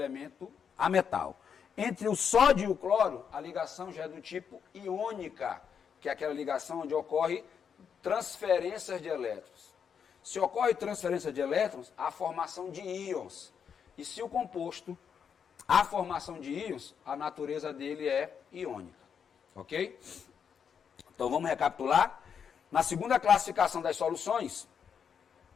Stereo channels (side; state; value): right; quieter; 7.2 dB